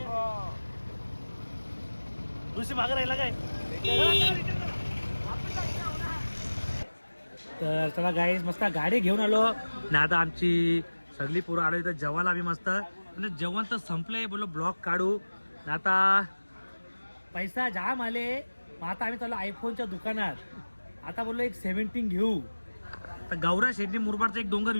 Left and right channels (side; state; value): both; inverted; correlation -1.00